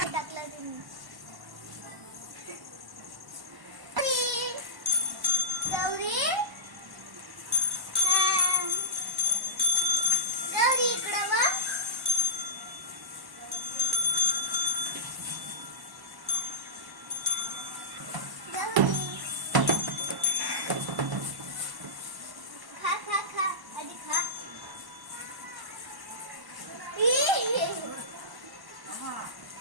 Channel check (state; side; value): late; left; 1.1 ms